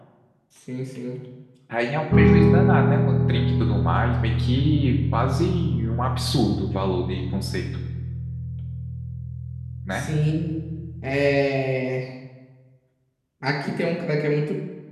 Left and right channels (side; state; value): both; identical; correlation 1.00